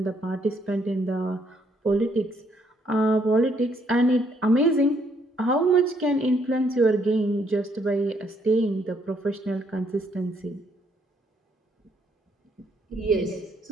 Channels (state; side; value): normal; both; correlation 0.70